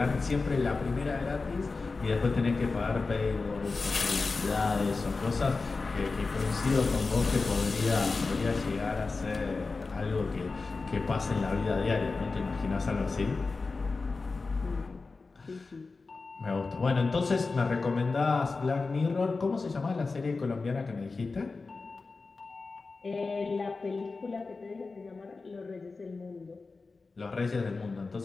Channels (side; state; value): right; quieter; 4.0 dB